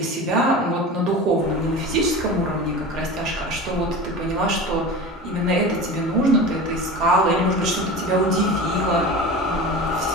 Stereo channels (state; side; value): normal; both; correlation 0.32